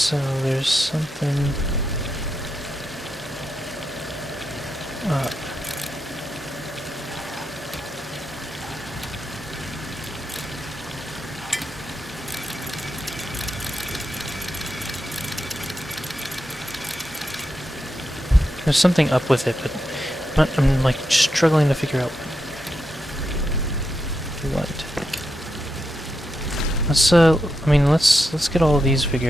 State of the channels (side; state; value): both; normal; correlation 0.86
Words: there's something... up. There's something up with it, but I'm like struggling to figure out what. Let's I mean let's get all of these